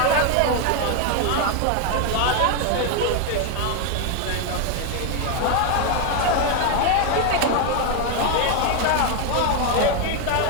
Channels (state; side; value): different; both; correlation 0.01